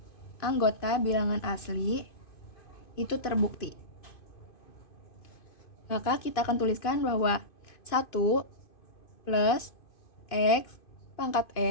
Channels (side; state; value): right; late; 2.5 ms